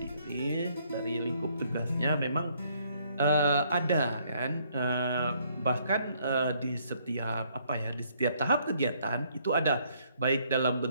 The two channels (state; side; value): inverted; both; correlation -0.67